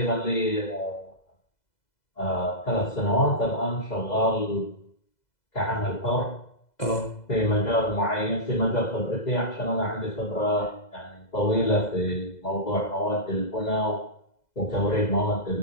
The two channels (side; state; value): right; late; 2.0 ms